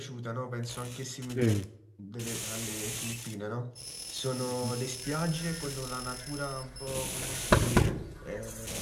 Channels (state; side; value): identical; both; correlation 1.00